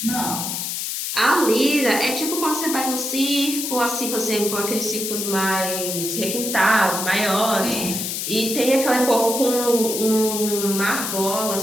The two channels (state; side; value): noise; left; hiss, 3 dB below the sound